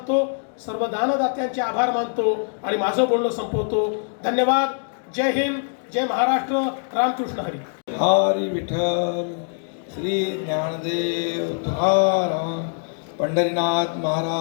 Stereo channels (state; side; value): silent; right; digital silence